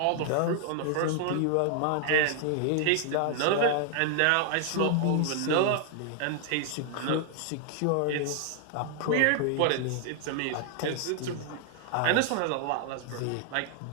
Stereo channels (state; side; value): different; both; correlation 0.00